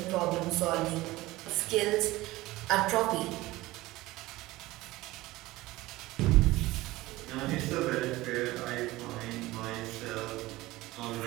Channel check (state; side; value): quieter; left; 18.7 dB